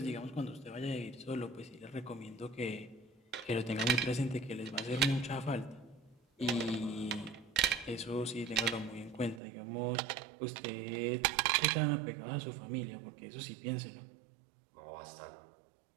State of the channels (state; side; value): drops out; left; at 9.4 s